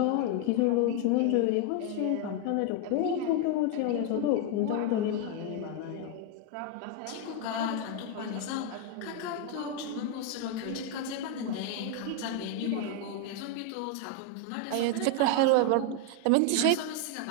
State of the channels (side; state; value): both; different; correlation 0.01